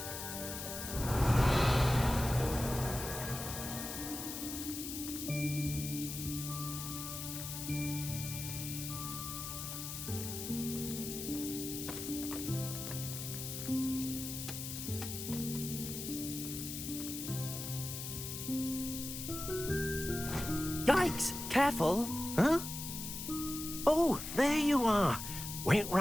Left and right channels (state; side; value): noise; left; hiss, 6 dB below the sound